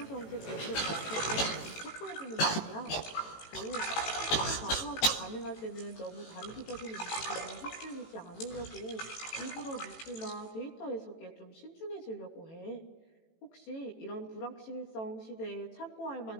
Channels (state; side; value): late; right; 18 ms